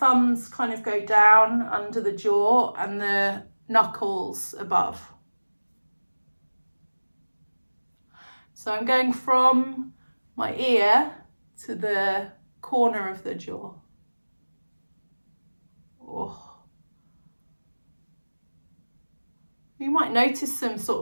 kind of go down under the jaw and the knuckles above. So I'm going from my ear to the corner of the jaw. Oh. You might notice some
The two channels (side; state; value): both; inverted; correlation -1.00